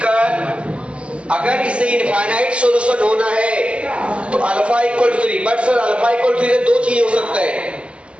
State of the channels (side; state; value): left; late; 0.057 ms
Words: अगर इसे इनफाइनाइट सॉल्यूशन होना है तो alpha equal to 3, but sir alpha equal to 3 से दो चीजें हो सकता है,